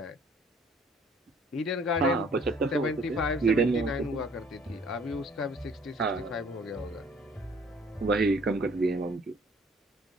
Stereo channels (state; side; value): normal; both; correlation 0.57